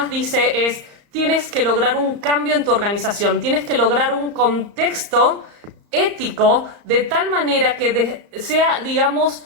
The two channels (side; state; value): left; late; 34 ms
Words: dice es: tienes que lograr un cambio en tu organización, tienes que lograr un contexto ético de tal manera que sea, digamos,